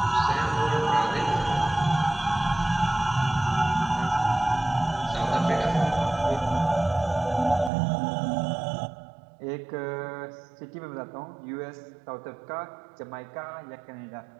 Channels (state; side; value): drops out; left; at 7.7 s